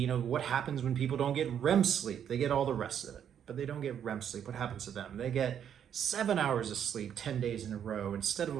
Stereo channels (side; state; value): left; quieter; 8.9 dB